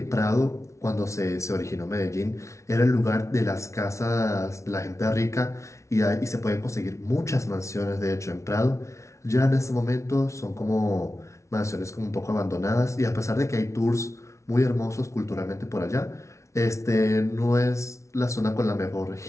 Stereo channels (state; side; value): late; right; 0.14 ms